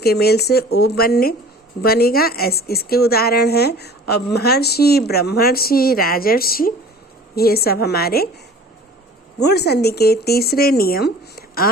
मेल से ओ बनेगा। इसके उदाहरण हैं। और महर्षि, ब्रह्मर्षि, राजर्षि, ये सब हमारे गुण संधि के तीसरे नियम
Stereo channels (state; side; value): normal; both; correlation 0.45